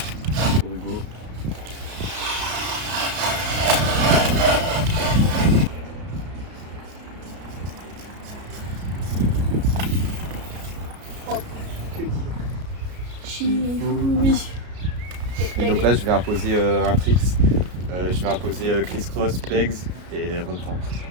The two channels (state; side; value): late; left; 33 ms